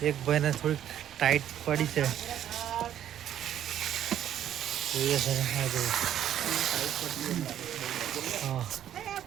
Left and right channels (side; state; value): left; quieter; 10.7 dB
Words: એક ભાઈને થોડીક ટાઈટ પડી છે. જોઈએ છે ને હા જો હા